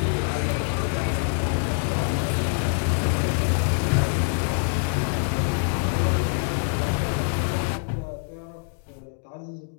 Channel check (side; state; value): right; silent; 56 dB below the other